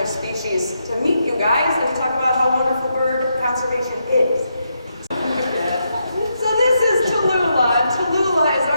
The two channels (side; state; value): both; inverted; correlation -0.81